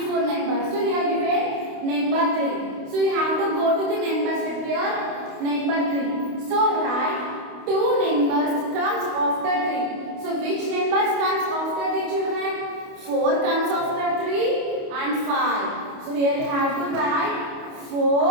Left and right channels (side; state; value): left; late; 29 ms